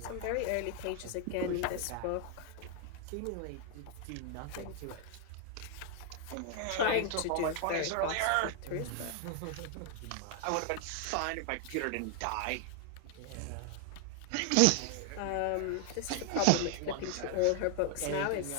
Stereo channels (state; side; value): different; both; correlation 0.01